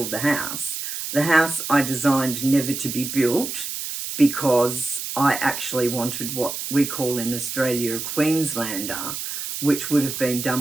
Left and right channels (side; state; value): right; noise; hiss, 6 dB below the sound